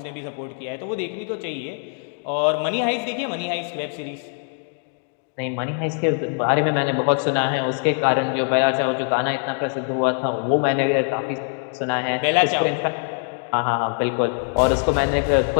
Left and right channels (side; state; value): right; silent; 58 dB below the other